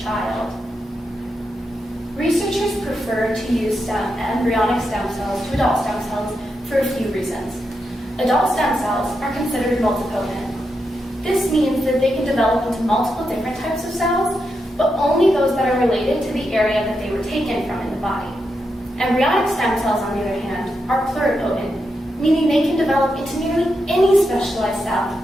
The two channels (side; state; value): both; normal; correlation 0.85